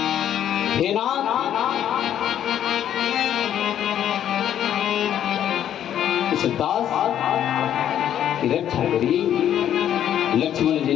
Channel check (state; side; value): quieter; right; 10.4 dB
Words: हे नाथ दास की रक्षा करिए। लक्ष्मण जी